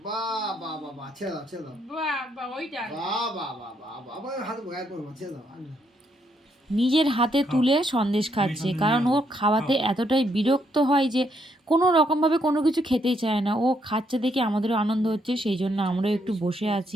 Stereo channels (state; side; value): normal; both; correlation 0.75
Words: বা বা বা বা ছেড়ে দাও ছেড়ে দাও। বাবা ওইটা বা বা বা বা বা আবার হাতে গায়ে করবো, ছেড়ে দাও। নিজের হাতে তুলে সন্দেশ খাচ্ছে, কারণ ও খাওয়াতে এতটাই বিরক্ত হয় যে কোনো রকমভাবে কোনো কিছু খেতেই চায় না। ও খাচ্ছে দেখে আমাদেরও আনন্দ হচ্ছে, সেই জন্য আমরাও একটু বসে